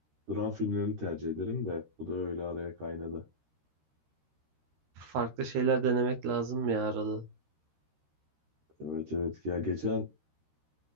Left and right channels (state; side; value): late; left; 13 ms